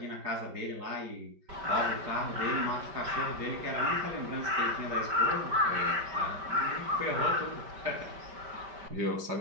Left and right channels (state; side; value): late; left; 5.1 ms